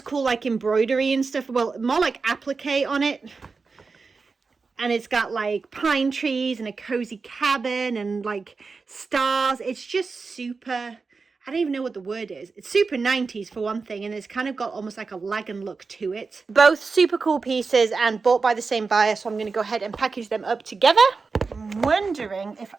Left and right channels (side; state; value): left; quieter; 4.5 dB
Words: like embroidery and stuff. Well, more like applique on it. And it's got like pine trees and a cozy cabin and like stars. It's just super, I don't even know what the word is. It's super 90s for one thing, and it's kind of got almost like a Lagan look to it. Both super cool pieces and bought by the same buyer, so I'm going to go ahead and package them up together. I'm wondering if